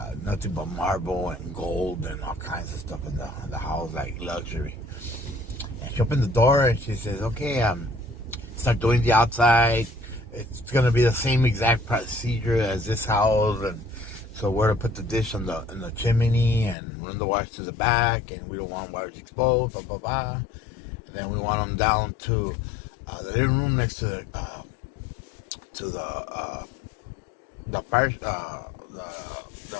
Nothing but marble and gold and all kinds of stuff in the house, like luxury. And she opened the door and she says, okay, start doing the outside. It's going to be the same exact procedure as this house. And so we're to put the dish in the chimney and run the wires to the back, and we don't want wires exposed, blah, blah, blah. And then we want them down to the living room next to the fire,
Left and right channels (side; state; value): right; drops out; at 16.8 s